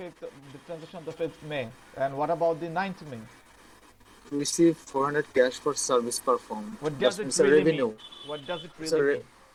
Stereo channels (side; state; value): both; identical; correlation 1.00